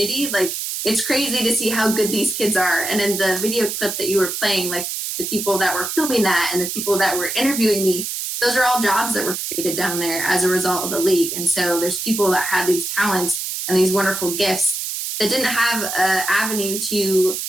like, it's crazy to see how good these kids are. And in the video clip that you were playing, like the people that were filming that and the people that were interviewing me, those are all jobs that were created down there as a result of the league. And so there's people that had these talents and these wonderful gifts that didn't have an avenue to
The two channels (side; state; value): right; noise; hiss, 4 dB below the sound